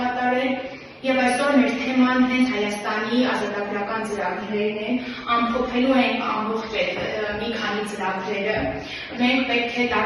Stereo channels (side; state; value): both; identical; correlation 1.00